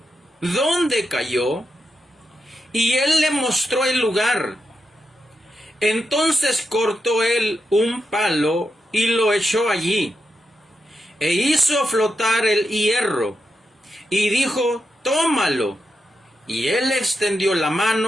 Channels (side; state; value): both; normal; correlation 0.86